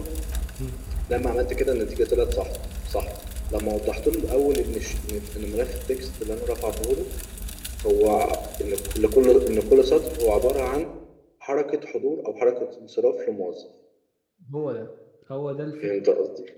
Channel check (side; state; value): both; identical; correlation 1.00